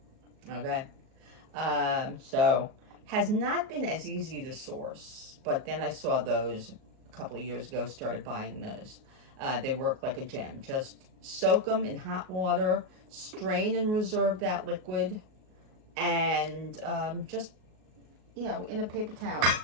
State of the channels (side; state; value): left; late; 38 ms